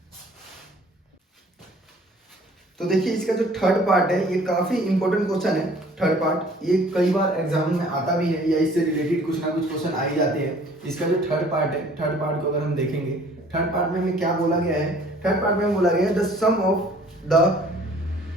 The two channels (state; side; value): normal; both; correlation 0.54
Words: तो देखिए इसका जो थर्ड पार्ट है ये काफी इंपॉर्टेंट क्वेश्चन है। थर्ड पार्ट ये कई बार एग्जाम में आता भी है या इससे रिलेटेड कुछ ना कुछ क्वेश्चन आ ही जाते हैं। इसका जो थर्ड पार्ट है, थर्ड पार्ट को अगर हम देखेंगे, थर्ड पार्ट में हमें क्या बोला गया है, थर्ड पार्ट में बोला गया है the sum of